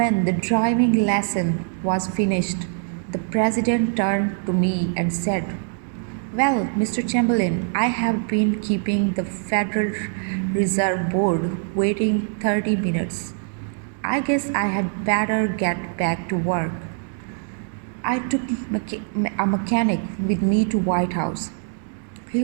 the driving lesson was finished, the president turned to me and said, well, Mr. Chamberlain, I have been keeping the Federal Reserve Board waiting 30 minutes. I guess I had better get back to work. I took a mechanic with me to White House. He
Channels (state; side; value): silent; left; 56 dB below the other